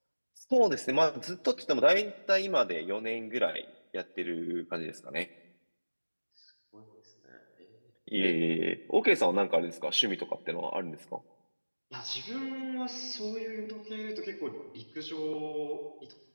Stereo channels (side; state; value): both; inverted; correlation -1.00